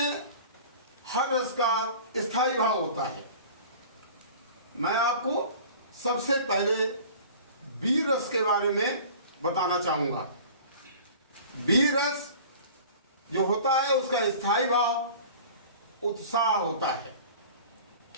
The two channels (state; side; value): inverted; both; correlation -0.42